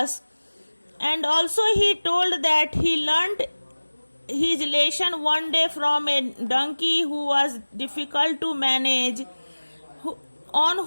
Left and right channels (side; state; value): both; inverted; correlation -1.00